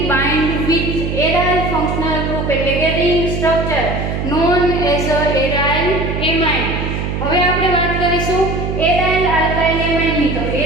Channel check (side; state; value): right; noise; hum, 3 dB below the sound